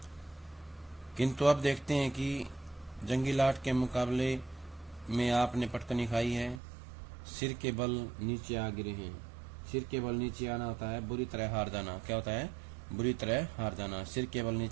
किंतु अब देखते हैं कि जंगी लाट के मुकाबले में आपने पटकनी खाई है। सिर के बल नीचे आ गिरे हैं। सिर के बल नीचे आना होता है बुरी तरह हार जाना। क्या होता है? बुरी तरह हार जाना। सिर के बल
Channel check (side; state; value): left; drops out; at 6.6 s